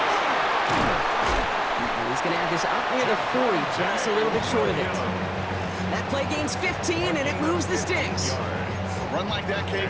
And he's going to have this up near the 40, just a little bit short of it. That play gains 15, and it moves the sticks. A run like that, Kate,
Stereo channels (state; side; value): identical; both; correlation 1.00